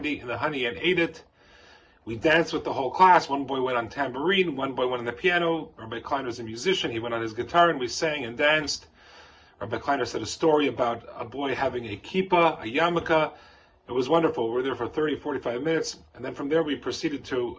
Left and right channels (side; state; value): both; identical; correlation 1.00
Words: in the honey and ate it. We danced with the whole class. One boy went on tambourine, one boy went on the piano. Rabbi Kleiner was a musician. He went on his guitar, and we sang and danced. Rabbi Kleiner said a story about a boy having a kippah, a yarmulke. It was wonderful. We were there for 30, 45 minutes, and then from there we proceeded